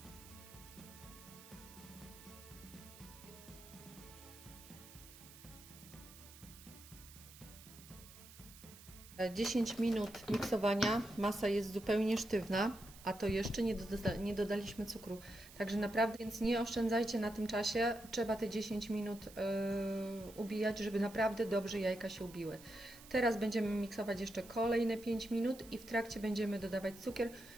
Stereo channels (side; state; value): right; noise; hiss, 19 dB below the sound